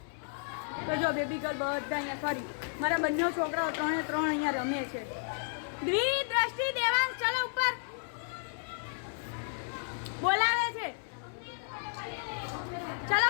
તો જો બેબી ગર્લ બધા અહીંયા સોરી મારા બંને છોકરાઓ 3 એ 3 અહીંયા રમે છે. દ્વિદ્રષ્ટિ દેવાંશ ચલો ઉપર બોલાવે છે. ચલો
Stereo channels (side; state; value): right; silent; 56 dB below the other